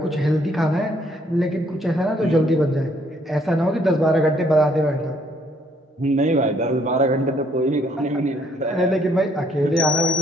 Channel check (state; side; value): normal; both; correlation 0.67